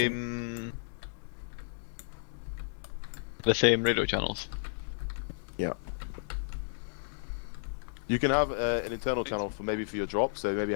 same radio channels? You can have an internal channel for maybe for your drop, so maybe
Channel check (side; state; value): right; silent; digital silence